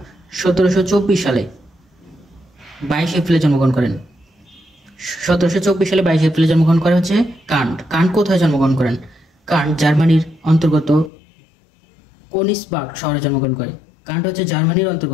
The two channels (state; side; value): drops out; right; at 11.1 s